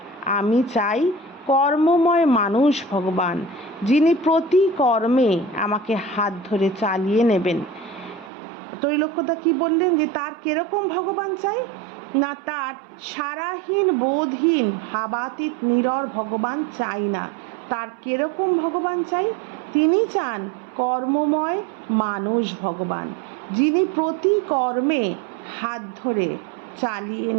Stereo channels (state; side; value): drops out; left; at 8.3 s